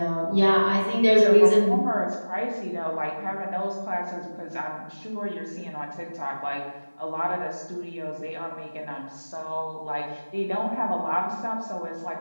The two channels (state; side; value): inverted; both; correlation -1.00